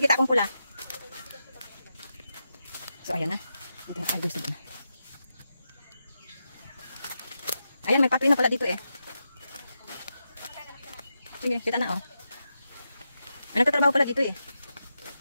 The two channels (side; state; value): both; inverted; correlation -0.87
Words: akong pula. So, ayan na. Ito yung gusto na. Ayan, may pathway na pala dito eh. Sige, kita na oh. May nagtatrabaho pala dito eh.